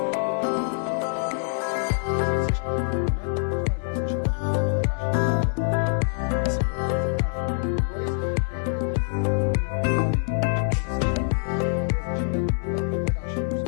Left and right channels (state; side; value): silent; right; 62 dB below the other